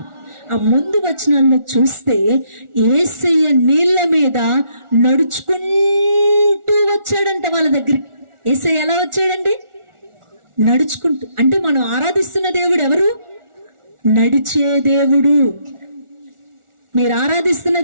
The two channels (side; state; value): left; late; 1.4 ms